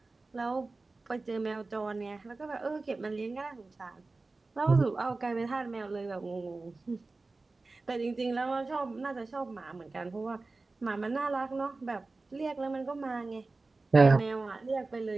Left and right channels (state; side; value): quieter; left; 3.5 dB